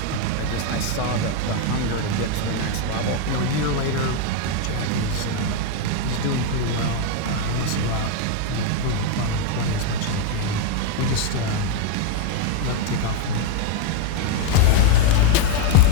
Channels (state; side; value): different; both; correlation 0.02